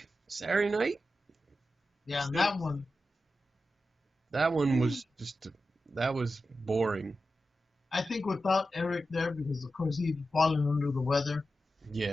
Saturday night. Yeah, and that one. That one was that was boring. I think without Eric there, because of course he'd fallen under the weather.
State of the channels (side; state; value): both; normal; correlation 0.91